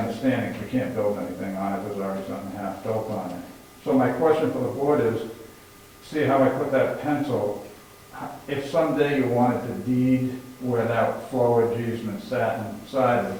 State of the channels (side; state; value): both; identical; correlation 1.00